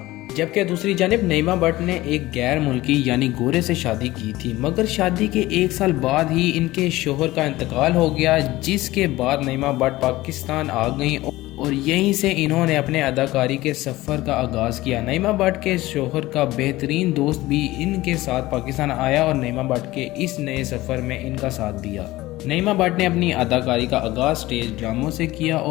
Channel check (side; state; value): right; quieter; 18.0 dB